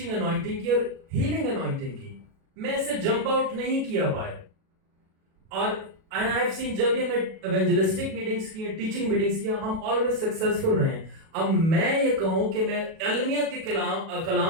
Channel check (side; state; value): left; late; 37 ms